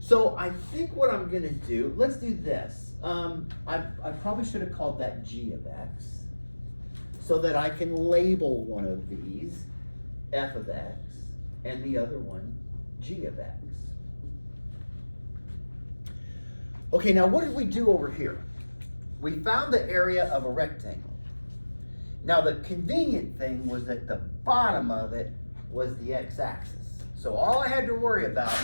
I think what I'm going to do, let's do this. I probably should have called that g of x, so that I can label one of these f of x and the other one g of x. Okay, now what did we do over here? We found the area of a rectangle. Now the convenient thing was that the bottom of it was the x-axis. So all I had to worry about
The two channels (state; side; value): inverted; both; correlation -1.00